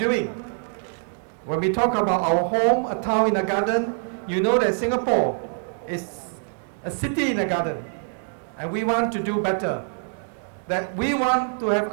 When we talk about our home, a town in a garden, you know that Singapore is a city in a garden. And we want to do better. That we want to have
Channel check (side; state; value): left; silent; 56 dB below the other